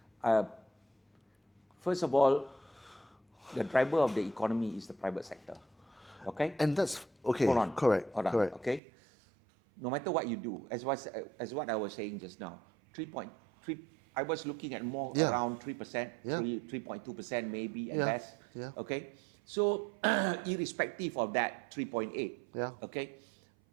First of all, the driver of the economy is the private sector. Okay? And that's okay. Hold on. Correct. Hold on. Correct. Okay? No matter what you do, as what I was saying just now, 3.3. I was looking at more around 3%, 3.2% maybe at best. Yeah. Okay? So, irrespective of that 3.8, okay?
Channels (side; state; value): left; drops out; at 8.8 s